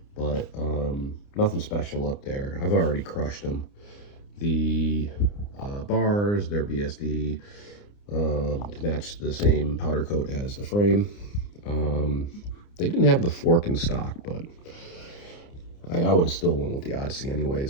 but nothing special up there. I've already crushed them. The bars, they're BSD to match the same powder coat as the frame. They didn't have the fork in stock, but I would have still went with the Odyssey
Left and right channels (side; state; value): right; late; 29 ms